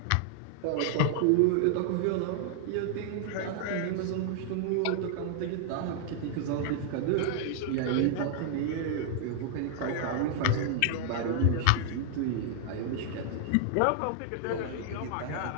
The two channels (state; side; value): different; both; correlation -0.01